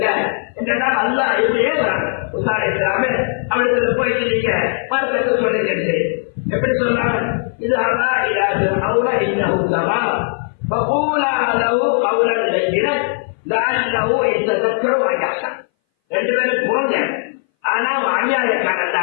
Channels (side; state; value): right; silent; 61 dB below the other